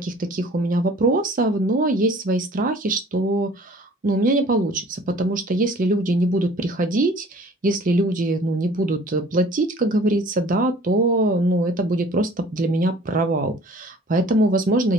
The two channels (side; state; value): both; normal; correlation 0.50